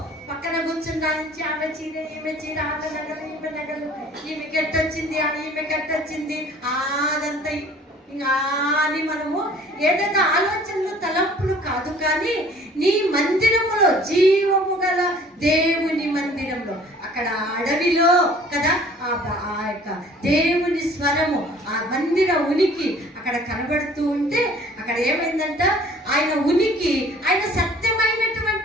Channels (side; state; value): both; normal; correlation 0.51